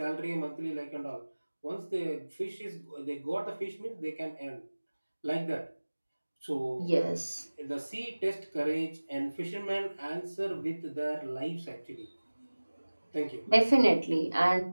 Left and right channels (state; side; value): inverted; both; correlation -1.00